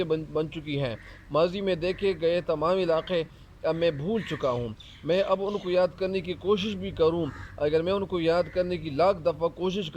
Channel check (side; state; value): both; identical; correlation 1.00